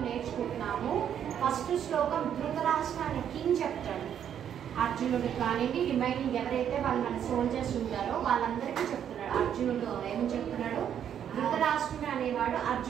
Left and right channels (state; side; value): quieter; left; 9.2 dB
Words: నేర్చుకుంటున్నాము. ఫస్ట్ శ్లోకం ధృతరాష్ట్ర అనే కింగ్ చెప్తాడు. అర్జునుడు కానివ్వండి, రిమైనింగ్ ఎవరైతే వాళ్ళు మన సోల్జర్స్ ఉంటారో వాళ్ళందరికీ చెప్తున్నాడు. అర్జునుడు ఏమని చెప్తున్నాడు? ధృతరాష్ట్రుడు అనేవాడు